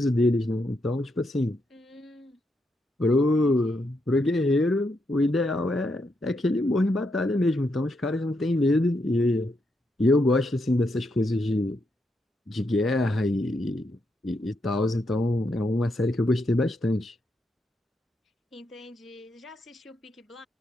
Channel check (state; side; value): normal; both; correlation 0.81